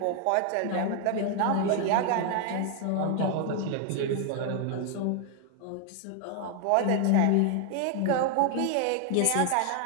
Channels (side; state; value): both; different; correlation 0.00